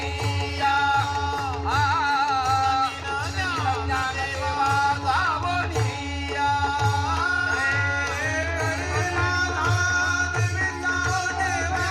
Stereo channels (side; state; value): both; identical; correlation 1.00